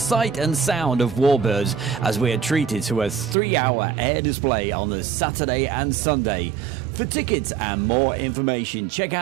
and sound of Warbirds as we are treated to a 3-hour air display on the Saturday and Sunday. For tickets and more information, check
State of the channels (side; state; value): left; drops out; at 3.4 s